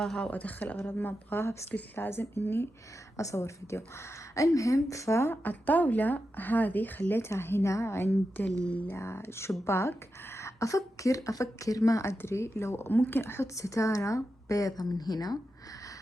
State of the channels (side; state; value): both; normal; correlation 0.89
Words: وأدخل أغراض ما أبغاها، بس قلت لازم إني أصور فيديو. المهم فالطاولة هذه خليتها هنا عند الشباك. أفكر ما أدري لو ممكن أحط ستارة بيضة من هنا